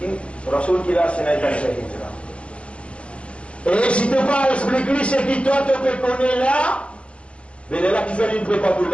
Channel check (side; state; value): right; late; 0.060 ms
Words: Rasoul qui l'a, c'est un hijra. Et si tu ne peux pas expliquer ce qui toi te connaît là, mais là qui fait une prépa pour